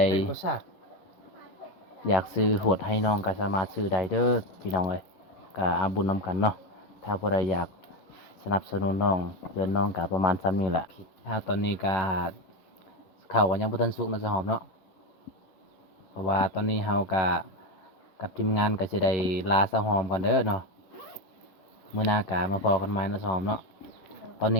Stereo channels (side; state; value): right; late; 11 ms